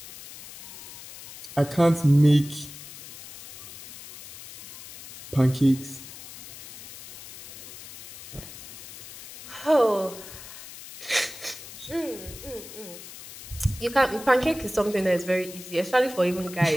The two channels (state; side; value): noise; left; hiss, 15 dB below the sound